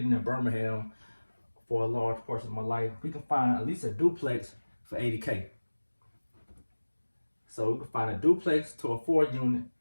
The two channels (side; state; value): both; inverted; correlation -1.00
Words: in Birmingham for a large portion of my life. We can find at least a duplex for $80K. So we can find a duplex to a 4 unit